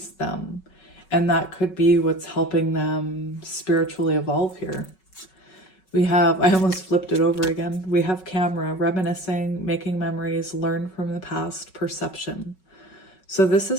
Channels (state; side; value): late; right; 5.3 ms